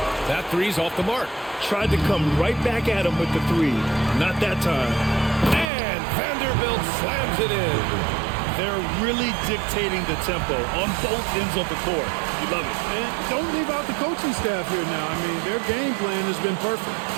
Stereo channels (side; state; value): left; drops out; at 5.7 s